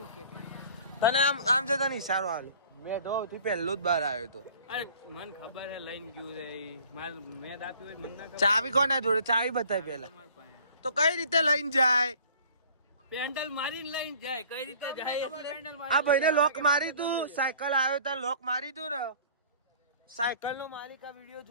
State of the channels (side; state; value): both; inverted; correlation -0.51